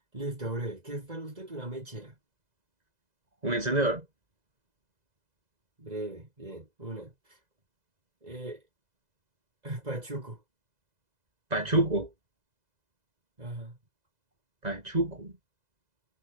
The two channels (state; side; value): late; left; 2.0 ms